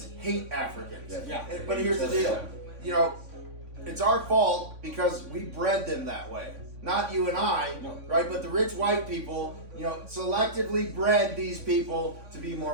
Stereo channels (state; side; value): late; left; 3.5 ms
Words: hate Africans. Yes. Yeah. But here's the deal. You know, it's our fault because we bred them that way. Not you and I, No. right? But the rich white people, you know, selectively bred these people to be